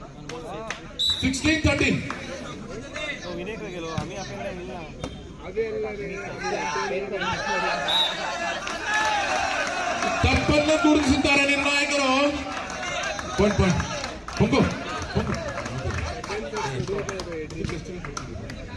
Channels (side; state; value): both; identical; correlation 1.00